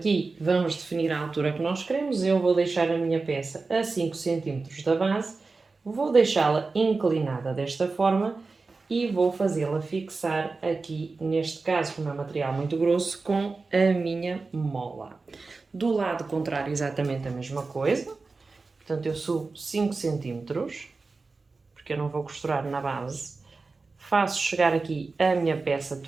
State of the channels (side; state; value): left; quieter; 4.0 dB